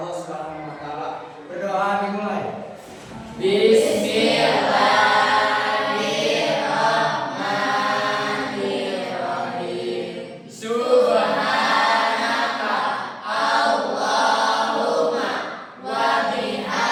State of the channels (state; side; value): identical; both; correlation 1.00